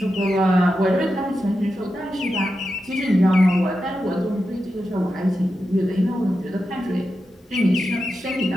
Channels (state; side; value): normal; both; correlation 0.89